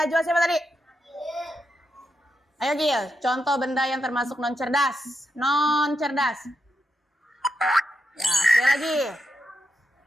siapa tadi? Ayo Gil, contoh benda yang termasuk non cerdas, Ya, sekali lagi.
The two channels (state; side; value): normal; both; correlation 0.84